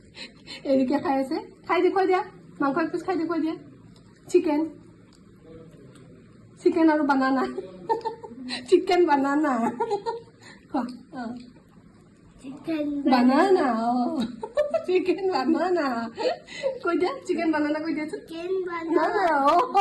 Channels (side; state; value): both; identical; correlation 1.00